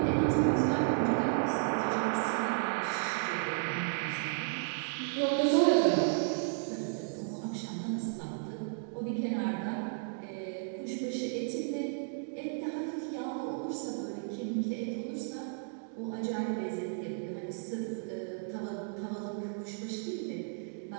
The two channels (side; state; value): left; silent; digital silence